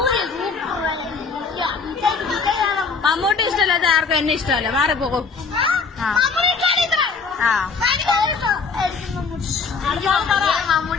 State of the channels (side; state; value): right; quieter; 4.9 dB